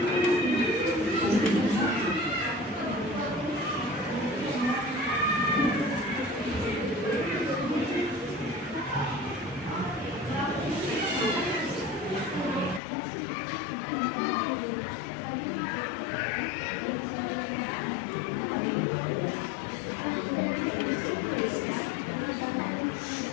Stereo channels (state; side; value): drops out; right; at 12.8 s